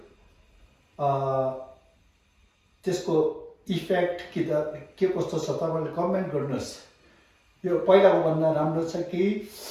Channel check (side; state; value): both; identical; correlation 1.00